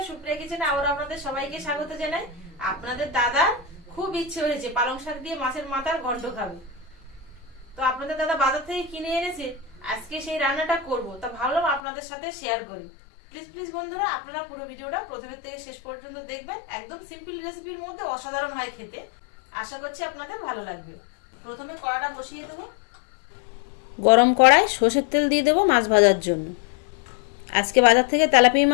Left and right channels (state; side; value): drops out; right; at 11.8 s